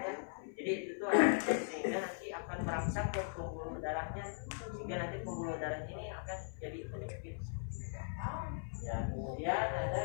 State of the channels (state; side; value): silent; right; 52 dB below the other